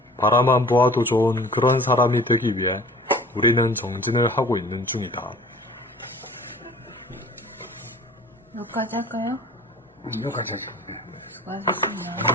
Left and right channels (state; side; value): normal; both; correlation 0.46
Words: 바라만 보아도 좋은 그런 사람이 되기 위해 우리는 정진을 하고 있는 중이다. 여기까지 할까요? 여기까지 하죠.